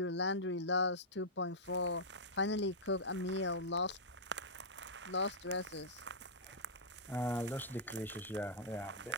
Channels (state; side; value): normal; both; correlation -0.12